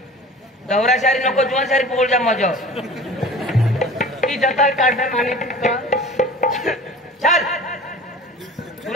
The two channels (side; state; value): both; normal; correlation 0.41